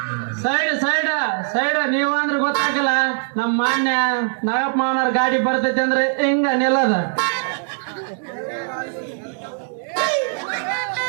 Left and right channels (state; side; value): silent; left; 60 dB below the other